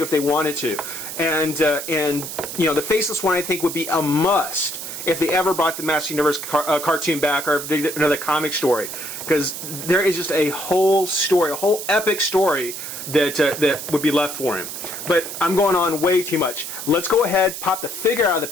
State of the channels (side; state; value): right; noise; hiss, 8 dB below the sound